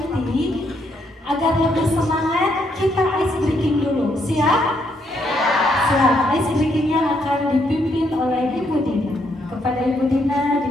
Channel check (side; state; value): both; normal; correlation 0.74